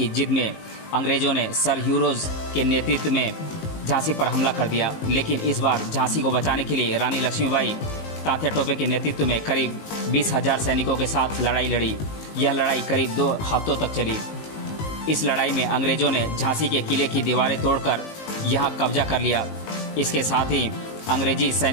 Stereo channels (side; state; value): right; late; 19 ms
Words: जिद में अंग्रेजों ने सर ह्यूरोज के नेतृत्व में झांसी पर हमला कर दिया, लेकिन इस बार झांसी को बचाने के लिए रानी लक्ष्मीबाई तात्या टोपे के नेतृत्व में करीब 20,000 सैनिकों के साथ लड़ाई लड़ी। यह लड़ाई करीब 2 हफ्तों तक चली। इस लड़ाई में अंग्रेजों ने झांसी के किले की दीवारें तोड़कर यहां कब्जा कर लिया। इसके साथ ही अंग्रेजी